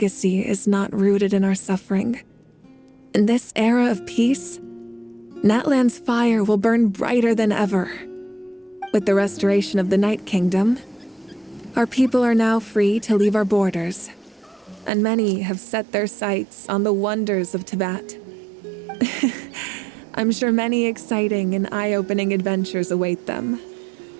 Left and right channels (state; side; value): drops out; left; at 14.9 s